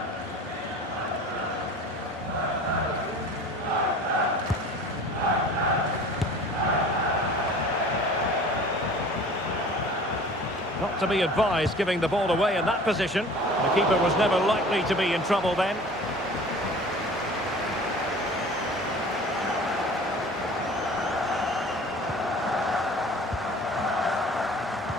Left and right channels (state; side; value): normal; both; correlation 0.44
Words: Not to be advised giving the ball away in that position. The keeper was never likely to be in trouble then.